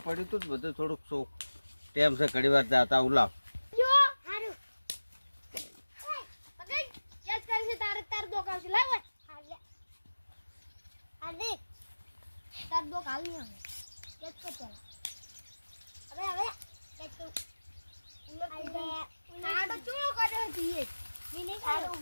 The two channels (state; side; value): inverted; both; correlation -1.00